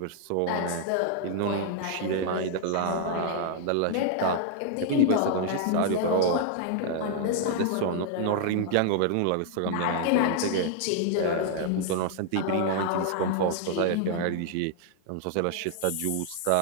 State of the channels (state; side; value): different; both; correlation 0.00